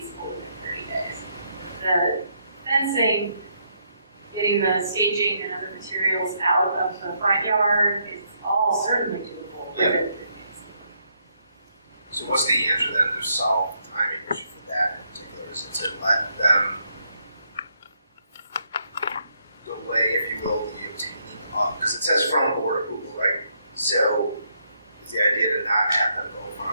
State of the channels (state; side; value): inverted; both; correlation -0.75